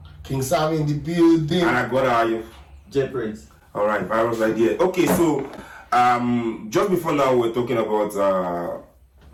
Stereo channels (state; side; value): identical; both; correlation 1.00